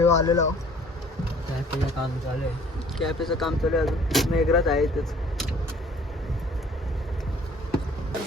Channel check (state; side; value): normal; both; correlation 0.55